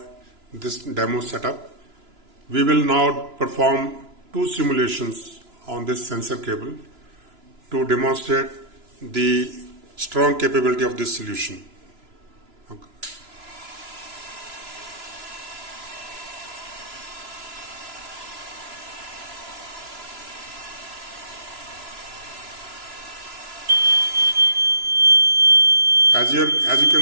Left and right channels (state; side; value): late; left; 2.9 ms